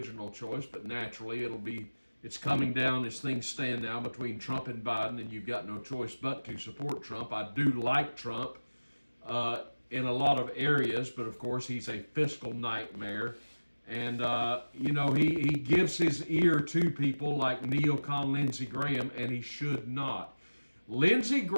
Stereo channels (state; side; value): inverted; both; correlation -1.00